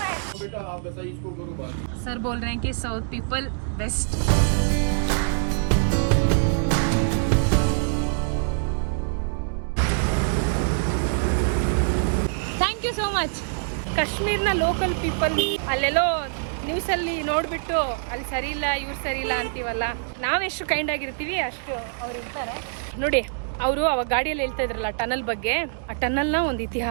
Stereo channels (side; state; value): left; silent; digital silence